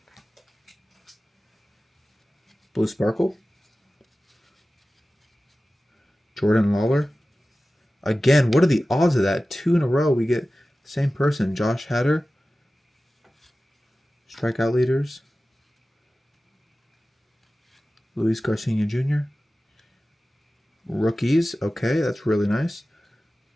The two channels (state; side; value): normal; both; correlation 0.96